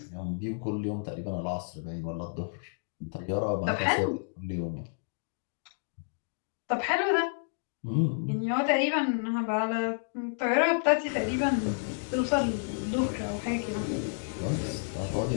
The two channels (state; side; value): silent; right; digital silence